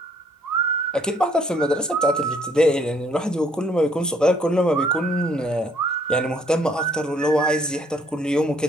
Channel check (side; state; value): both; normal; correlation 0.64